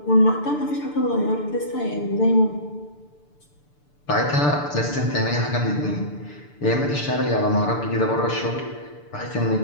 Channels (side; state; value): right; late; 6.8 ms